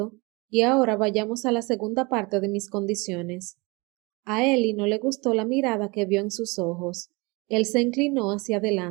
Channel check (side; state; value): left; quieter; 26.6 dB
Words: Y ahora vayamos a la segunda parte de mis condiciones. A Ellie no le gustó la mirada que vio en sus ojos. Él se inclinó hacia